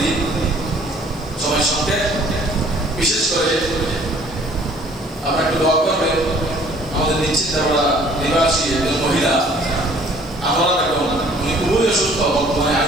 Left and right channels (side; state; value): right; noise; hiss, 28 dB below the sound